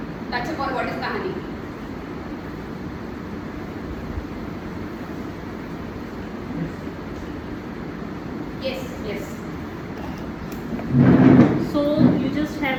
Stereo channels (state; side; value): identical; both; correlation 1.00